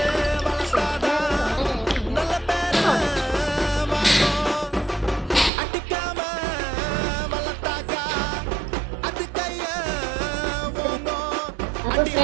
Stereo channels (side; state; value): left; drops out; at 5.5 s